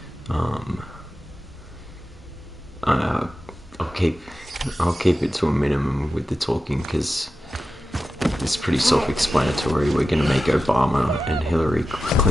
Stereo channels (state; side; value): normal; both; correlation 0.92